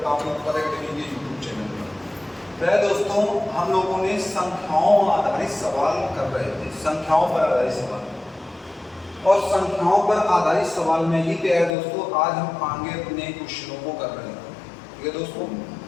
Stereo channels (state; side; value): drops out; right; at 11.8 s